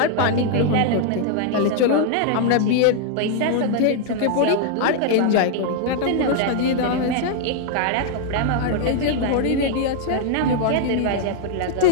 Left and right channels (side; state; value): both; different; correlation 0.00